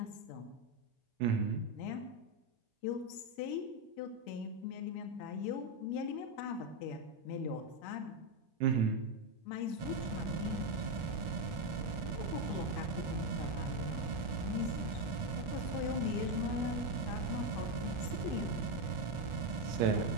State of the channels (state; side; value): late; left; 1.4 ms